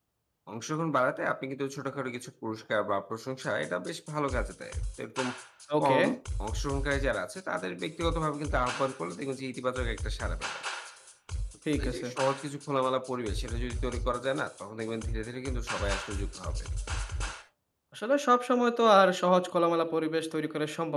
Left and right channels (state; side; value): identical; both; correlation 1.00